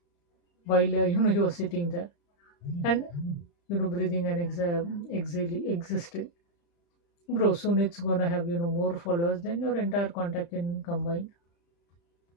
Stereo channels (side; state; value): right; late; 35 ms